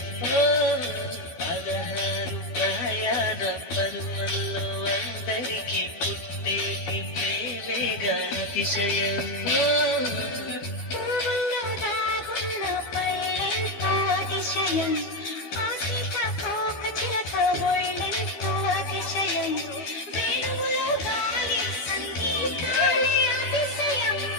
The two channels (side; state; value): right; late; 13 ms